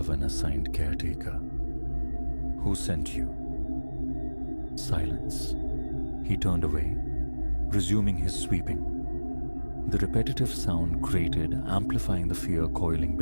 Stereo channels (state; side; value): inverted; both; correlation -1.00